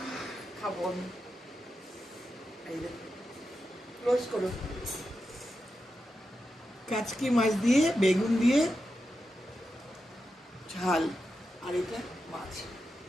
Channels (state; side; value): normal; both; correlation 0.89